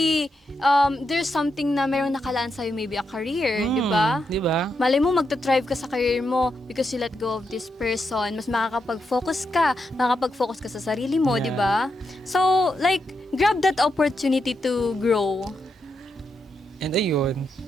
there's something na mayroong nakalaan sa'yo, maybe a career, di ba? Di ba? Malay mo, magta-thrive ka sa career mo because you let go of this person. Mas makakapag-focus ka sa sarili mo, Yeah. di ba? So, like, grab that opportunity to grow. And ayun,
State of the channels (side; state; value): both; normal; correlation 0.84